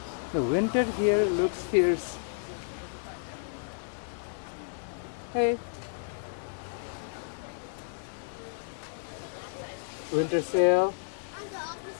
The winter here looks fierce. Hey. Winter sale.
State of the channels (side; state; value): right; silent; digital silence